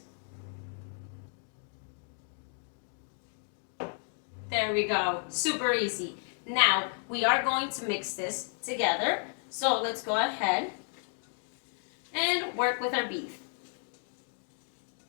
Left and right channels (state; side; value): silent; right; 55 dB below the other